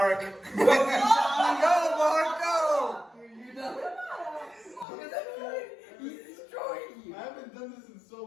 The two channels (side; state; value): right; drops out; at 4.9 s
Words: Go, Mark, go! You're done. He's destroying you. I haven't done this in so